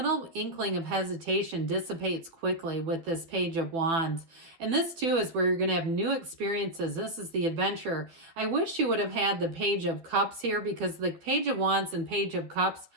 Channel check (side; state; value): left; late; 12 ms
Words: inkling of hesitation dissipates quickly with this Page of Wands. And this, too, is where you're going to have new experiences. This is the adventure. I wish you would have had the Page of Cups here because the Page of Wands and Page of Cups